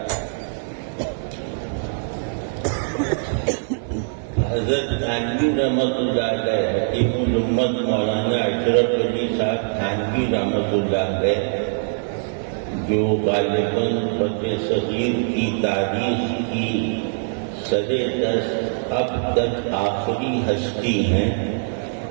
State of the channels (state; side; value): silent; left; digital silence